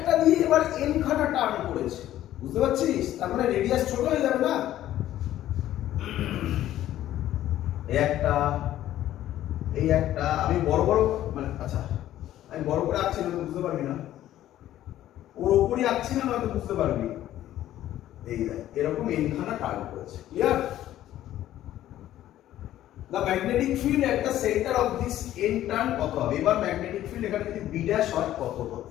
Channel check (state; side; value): quieter; right; 13.1 dB